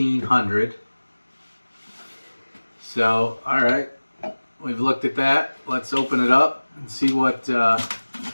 So, alright, we've looked at that. Let's open it up and see what the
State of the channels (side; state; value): both; inverted; correlation -1.00